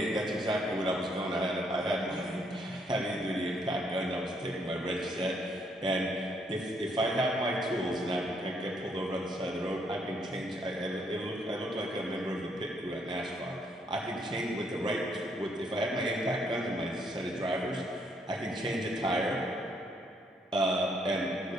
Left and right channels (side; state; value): both; normal; correlation 0.71